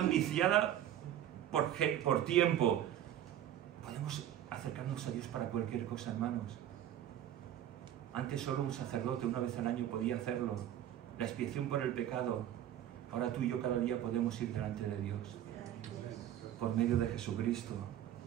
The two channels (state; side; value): quieter; left; 11.4 dB